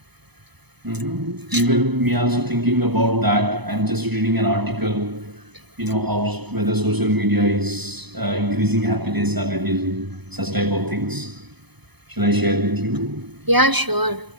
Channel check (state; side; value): late; left; 0.99 ms